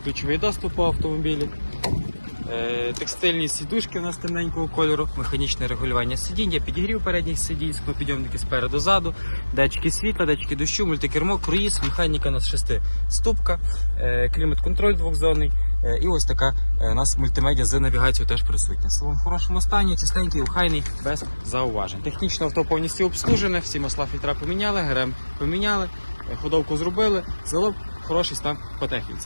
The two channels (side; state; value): both; inverted; correlation -1.00